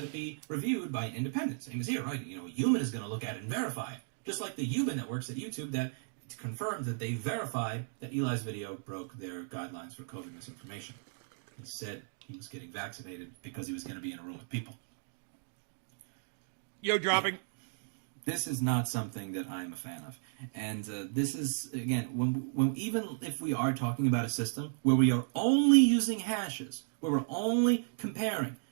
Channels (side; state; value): left; silent; digital silence